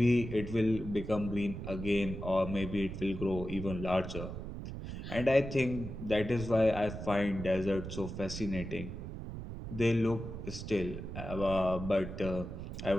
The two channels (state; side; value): noise; right; rumble, 8 dB below the sound